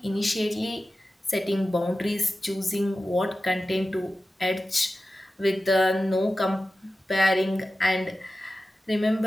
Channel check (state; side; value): normal; both; correlation 0.94